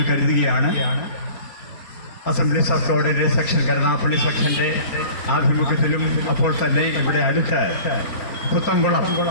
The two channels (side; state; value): right; late; 4.3 ms